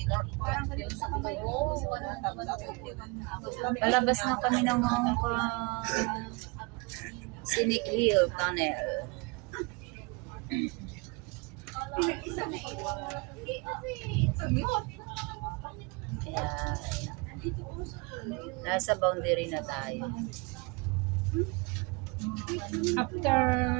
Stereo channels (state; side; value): quieter; left; 28.1 dB